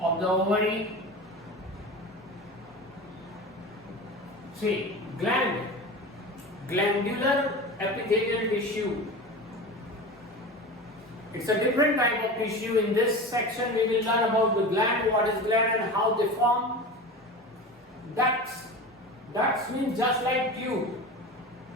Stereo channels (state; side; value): normal; both; correlation 0.30